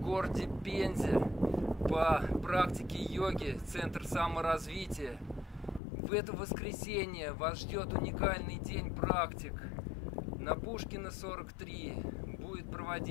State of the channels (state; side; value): drops out; right; at 5.8 s